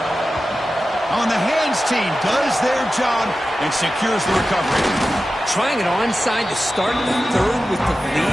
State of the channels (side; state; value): both; normal; correlation 0.93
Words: On the hands team does their job and secures the recovery. Trying it onside to start the third with the